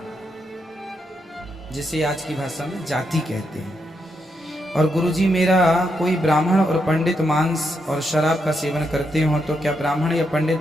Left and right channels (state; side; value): normal; both; correlation 0.81